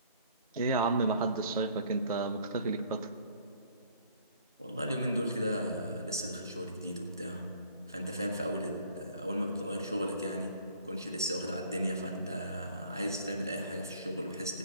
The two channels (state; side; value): inverted; both; correlation -0.56